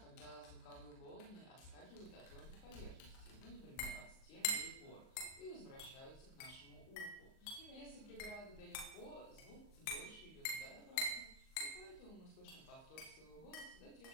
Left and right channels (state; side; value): late; right; 38 ms